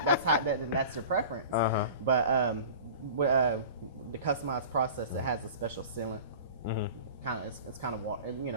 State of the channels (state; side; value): inverted; both; correlation -0.38